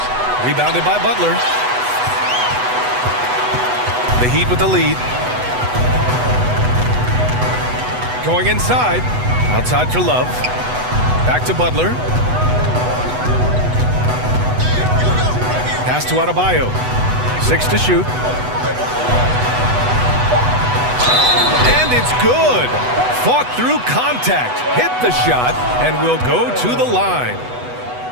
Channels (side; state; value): left; late; 8.1 ms